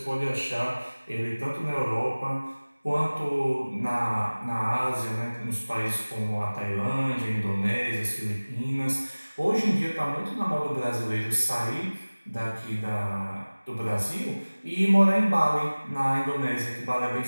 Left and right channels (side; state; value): both; inverted; correlation -1.00